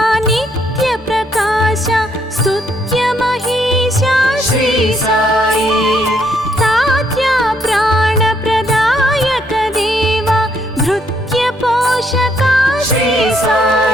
నిత్య ప్రకాశ స్తుత్య మహేశ శ్రీ సాయి తాత్య ప్రాణ ప్రదాయక దేవ భృత్య పోషక శ్రీ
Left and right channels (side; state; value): both; normal; correlation 0.71